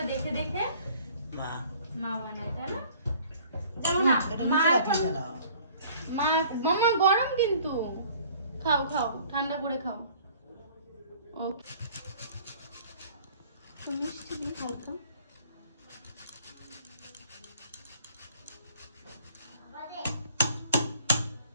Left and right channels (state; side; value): inverted; both; correlation -0.53